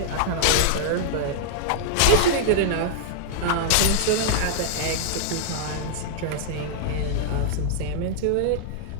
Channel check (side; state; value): both; different; correlation -0.01